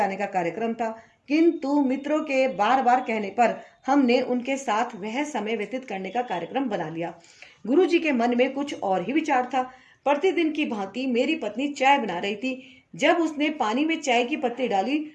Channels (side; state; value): both; identical; correlation 1.00